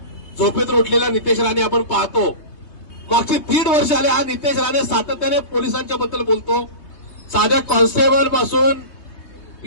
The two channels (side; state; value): right; late; 3.2 ms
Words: झोपेतून उठलेला नितेश राणे आपण पाहतो. मागची 1.5 वर्ष आले हा नितेश राणे सातत्याने पोलिसांच्या बद्दल बोलतो. साध्या कॉन्स्टेबल पासून